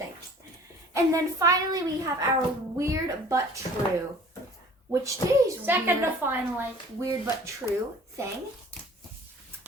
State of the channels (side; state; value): both; normal; correlation 0.49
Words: And then finally we have our weird but true, which today's Second to finally. weird but true thing.